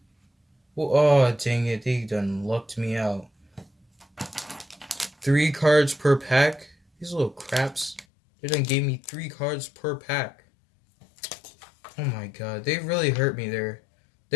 Oh, dang it. They done lucked me out. 3 cards per pack? These little craps. They done gave me 3 cards per pack. Oh my god. They really hurt me there.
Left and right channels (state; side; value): drops out; right; at 8.1 s